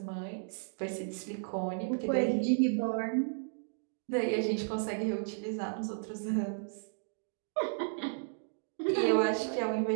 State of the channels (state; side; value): silent; left; digital silence